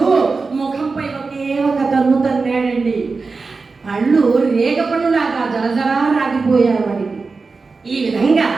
ముఖంపై ఒకే ఒక తన్ను తన్నాడండి. పళ్ళు రేగ పళ్ళులాగా జలజలా రాగిపోయారు వాడికి. ఈ విధంగా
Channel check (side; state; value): left; quieter; 4.2 dB